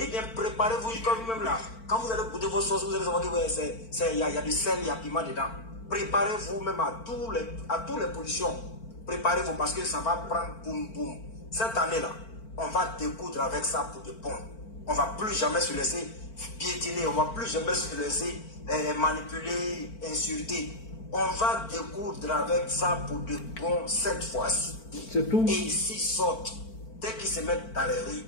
bien préparez-vous jusqu'à vous-même là. Quand vous allez goûter vos sauces, vous allez savoir qu'il y a du sel, il y a du piment dedans. Préparez-vous même à toutes les pollutions. Préparez-vous parce que ça va prendre boum boum. Cette année-là, on va découdre avec ça pour de bon. On ne va plus jamais se laisser piétiner, on ne va plus jamais se laisser manipuler, insulter. On va découdre avec ça pour de bon cette fois-ci. C'est tout. Et s'ils sortent, dès qu'ils se mettent dans les rues,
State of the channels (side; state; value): right; late; 4.4 ms